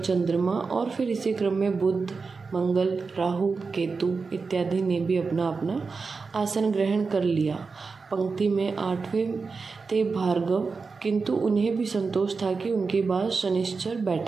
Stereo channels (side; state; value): left; quieter; 4.6 dB